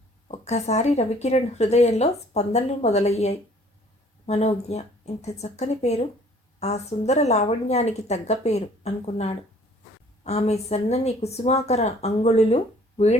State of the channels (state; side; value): normal; both; correlation 0.56